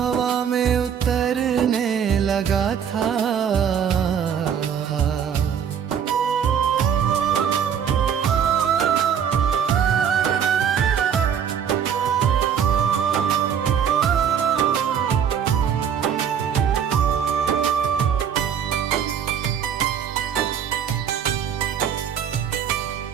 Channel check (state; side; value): quieter; left; 8.1 dB